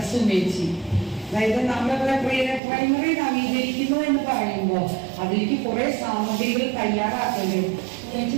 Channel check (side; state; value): left; drops out; at 2.6 s